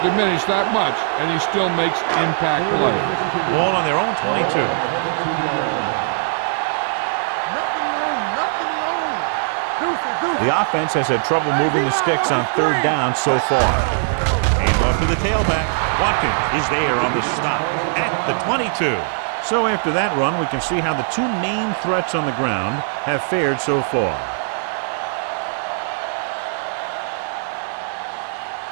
diminished that much, and he still makes impact plays. Ball on their own 22. The offense has had trouble moving the sticks on third down so far. Hand off to the tailback. Watkins is there on the stop at the 22. So after that run, we can see how the two main threats on the ground have fared so far.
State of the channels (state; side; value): silent; left; 66 dB below the other